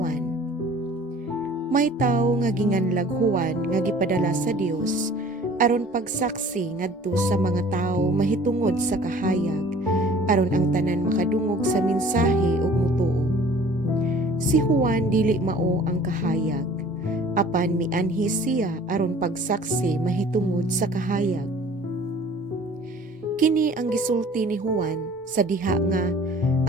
May tawo nga ginganlag Juan nga gipadala sa Dios aron pagsaksi ngadto sa mga tawo mahitungod sa kahayag aron ang tanan makadungog sa mensahe ug mutuo. Si Juan dili mao ang kahayag, apan mianhi siya aron pagsaksi mahitungod sa kahayag. Kini ang gisulti ni Juan sa diha nga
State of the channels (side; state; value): both; normal; correlation 0.49